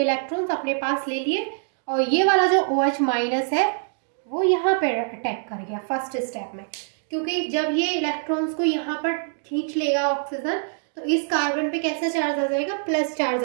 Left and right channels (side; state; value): left; silent; digital silence